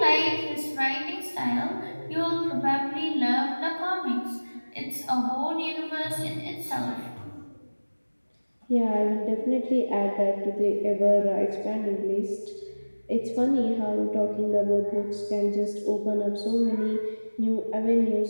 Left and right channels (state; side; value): inverted; both; correlation -1.00